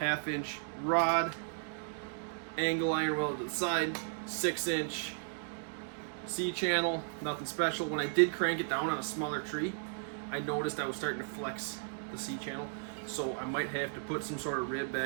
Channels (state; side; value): silent; left; digital silence